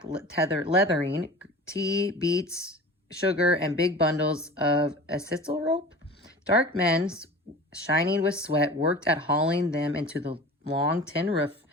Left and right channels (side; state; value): both; normal; correlation 0.37